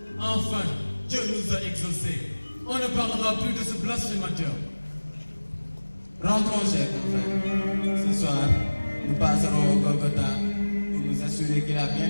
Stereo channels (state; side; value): inverted; both; correlation -1.00